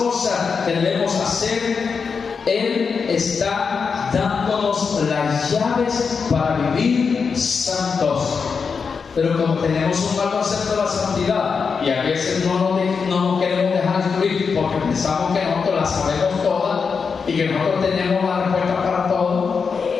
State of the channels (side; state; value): right; quieter; 5.5 dB